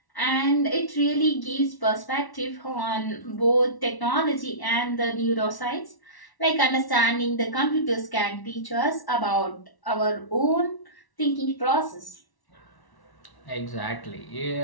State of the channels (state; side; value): late; right; 1.1 ms